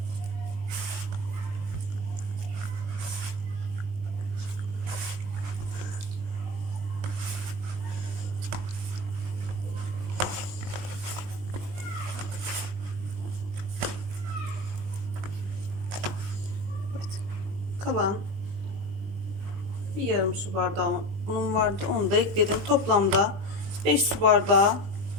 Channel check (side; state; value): left; late; 20 ms